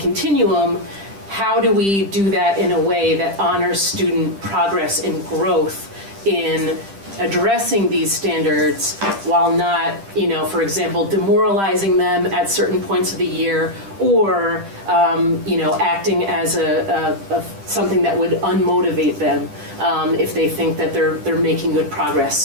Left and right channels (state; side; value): late; left; 10 ms